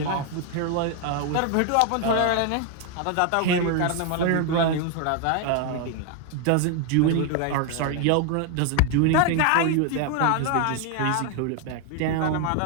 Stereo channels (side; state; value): both; different; correlation 0.01